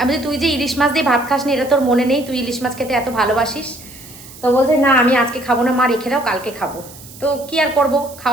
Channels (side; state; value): right; noise; hiss, 19 dB below the sound